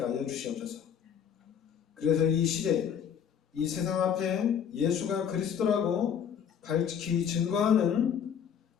하여 주시옵소서. 그래서 이 시대, 이 세상 앞에 예수가 그리스도라고 밝히 증거하는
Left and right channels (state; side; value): quieter; right; 8.1 dB